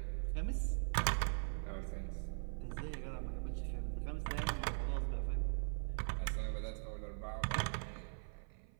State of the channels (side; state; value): left; silent; 50 dB below the other